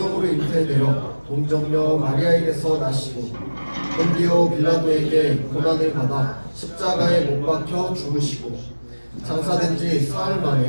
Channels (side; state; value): both; inverted; correlation -1.00